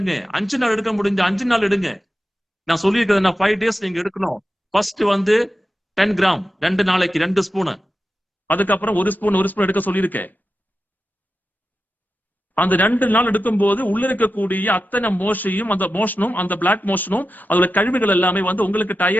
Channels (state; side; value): normal; both; correlation 0.92